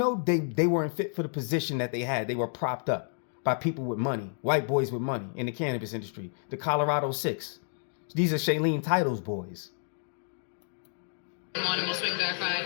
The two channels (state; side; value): silent; right; 58 dB below the other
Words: they weren't fit for the position that they had. They were propped up by people with money, white boys with money in the cannabis industry, the Colorado 6. These are Shailene Title's boys. And we'll swing back by.